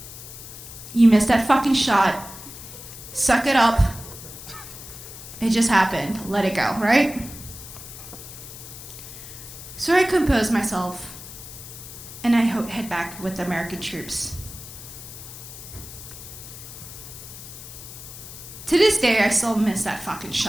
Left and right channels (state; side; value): noise; left; hiss, 13 dB below the sound